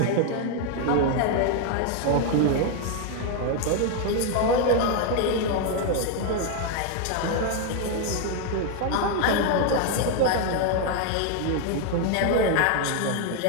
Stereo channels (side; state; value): both; different; correlation 0.01